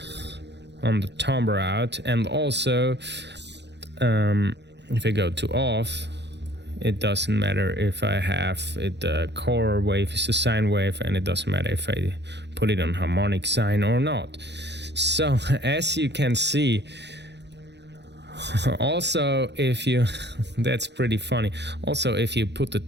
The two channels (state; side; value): late; left; 0.50 ms